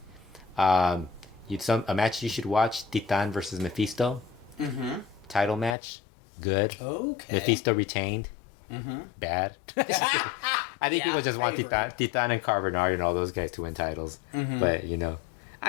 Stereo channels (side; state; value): right; drops out; at 5.8 s